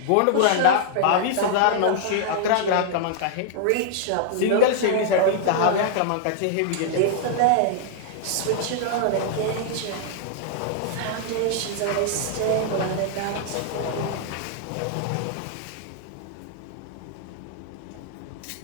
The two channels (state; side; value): different; both; correlation -0.01